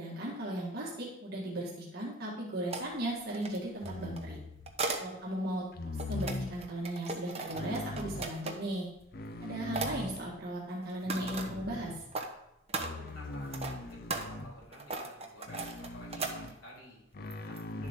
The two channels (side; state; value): both; normal; correlation 0.41